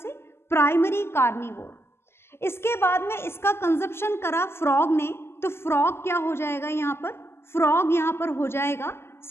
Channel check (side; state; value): right; late; 0.12 ms